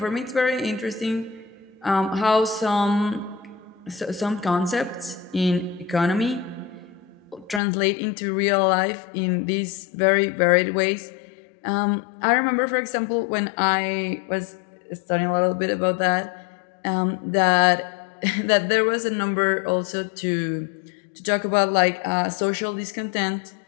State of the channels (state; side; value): drops out; right; at 7.6 s